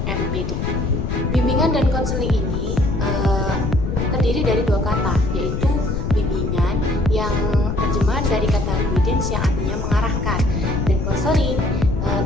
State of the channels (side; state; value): left; noise; rumble, 2 dB below the sound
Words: MPD. Bimbingan dan konseling ini terdiri dari dua kata, yaitu bimbingan yang terjemahan dari kata guidance yang artinya mengarahkan, dan konseling